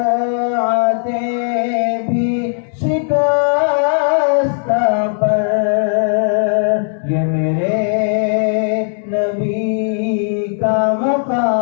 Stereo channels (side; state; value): right; silent; digital silence